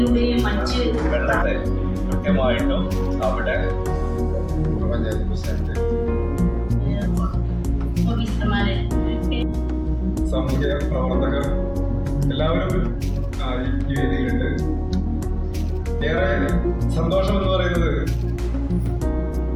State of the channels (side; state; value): both; identical; correlation 1.00